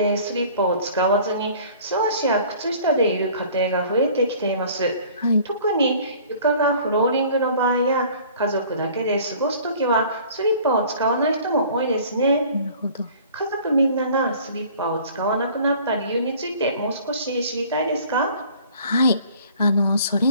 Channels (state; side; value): inverted; both; correlation -0.50